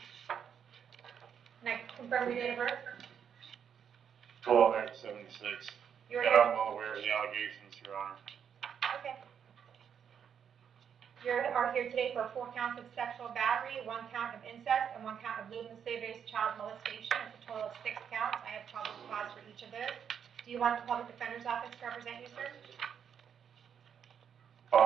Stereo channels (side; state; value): left; quieter; 7.9 dB